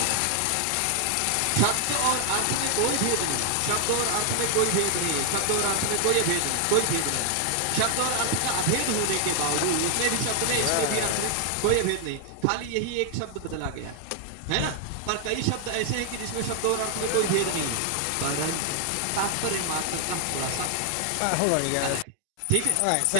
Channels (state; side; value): different; both; correlation 0.00